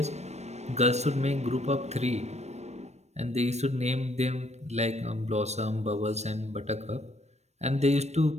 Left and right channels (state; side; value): late; left; 0.32 ms